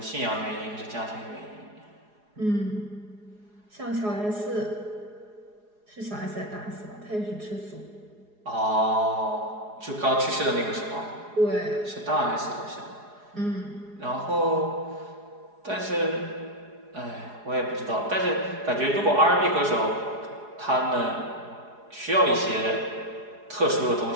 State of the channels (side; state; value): left; late; 4.8 ms